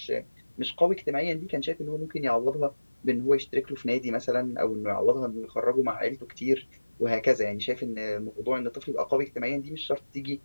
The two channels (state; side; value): inverted; both; correlation -1.00